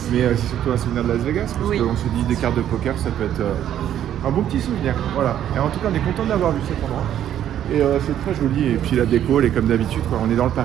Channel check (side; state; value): left; quieter; 10.8 dB